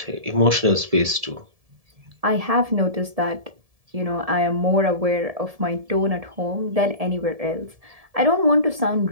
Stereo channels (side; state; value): left; late; 1.7 ms